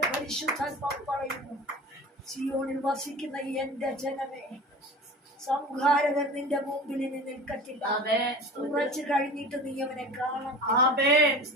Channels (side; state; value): both; normal; correlation 0.36